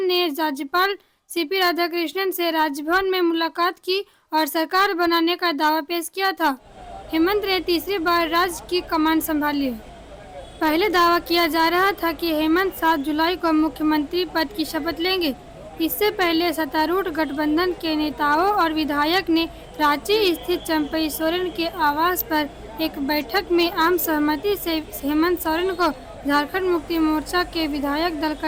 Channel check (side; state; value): both; identical; correlation 1.00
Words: ने राज्यपाल सीपी राधाकृष्णन से राजभवन में मुलाकात की और सरकार बनाने का दावा पेश किया था। हेमंत ने तीसरी बार राज्य की कमान संभाली है। पहले दावा किया जा रहा था कि हेमंत 7 जुलाई को मुख्यमंत्री पद की शपथ लेंगे। इससे पहले सत्तारूढ़ गठबंधन के नेताओं और विधायक ने रांची स्थित चंपई सोरेन के आवास पर एक बैठक में आम सहमति से हेमंत सोरेन को झारखंड मुक्ति मोर्चा के विधायक दल